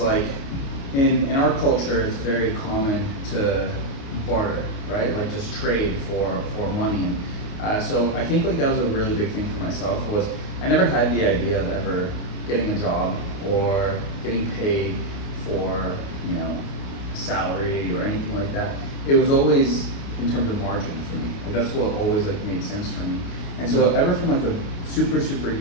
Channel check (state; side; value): late; right; 29 ms